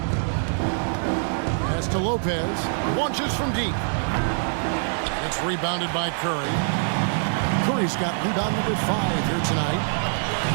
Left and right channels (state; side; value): silent; left; digital silence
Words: Pass to Lopez. Launches from deep. It's rebounded by Curry. Curry's got rebound number 5 here tonight.